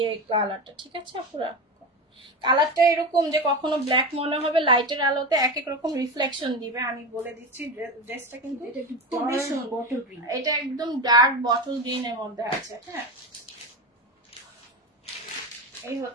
কালারটা, ঠিক আছে পুরো। কালারটা এরকম যে কখনো ব্ল্যাক মনে হবে, লাইটের আলোতে এক এক রকম রিফ্লেকশন দিবে। আমি বলে দিচ্ছি, ড্রেসটা কিন্তু খুবই সুন্দর। এটা একদম ডার্ক বটল গ্রিন এর মধ্যে আছে। হ্যাঁ, এই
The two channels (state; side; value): normal; both; correlation 0.21